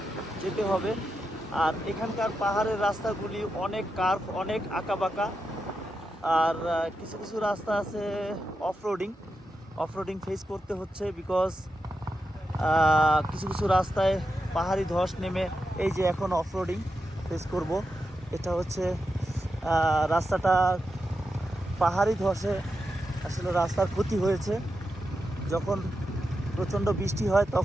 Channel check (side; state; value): both; normal; correlation 0.88